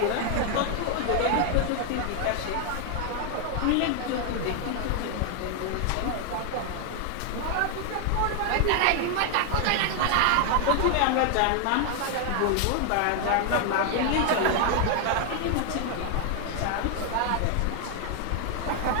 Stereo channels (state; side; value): different; both; correlation 0.00